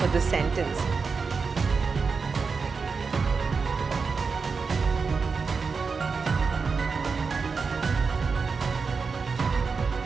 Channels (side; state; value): left; quieter; 5.0 dB